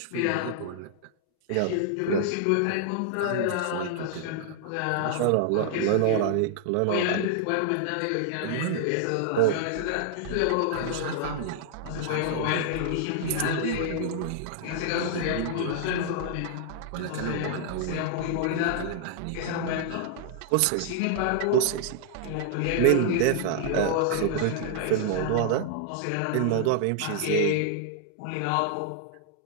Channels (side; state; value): both; different; correlation -0.01